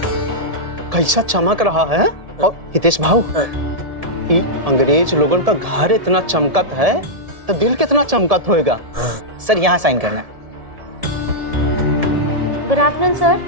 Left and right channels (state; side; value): late; left; 1.7 ms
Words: कैसा चमक रहा है। और हितेश भाऊ, ये अंग्रेज लोगों का घर इतना चमकत है तो दिल कितना चमकत होएगा। सर यहाँ साइन करना है। Good afternoon sir.